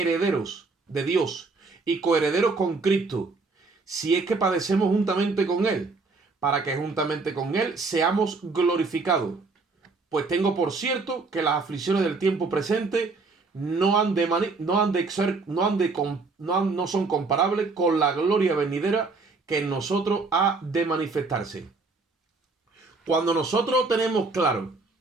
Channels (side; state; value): left; quieter; 4.0 dB